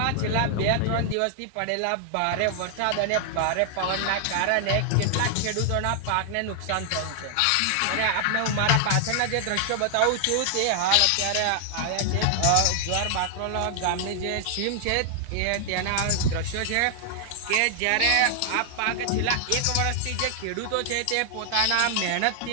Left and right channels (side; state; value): both; different; correlation 0.00